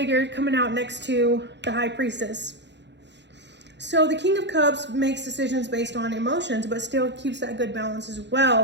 coming out next to the High Priestess. So the King of Cups makes decisions based on emotions, but still keeps that good balance as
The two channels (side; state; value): left; late; 0.51 ms